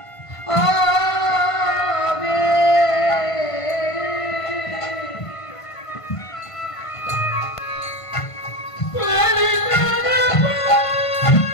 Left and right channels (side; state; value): right; late; 1.5 ms